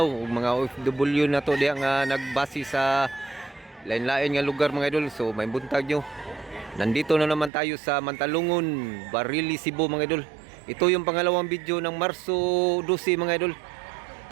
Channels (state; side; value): drops out; left; at 7.5 s